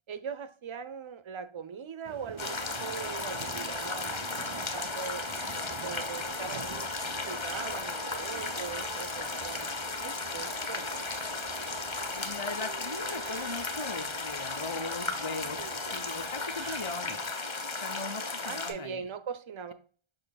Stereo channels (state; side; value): late; left; 1.3 ms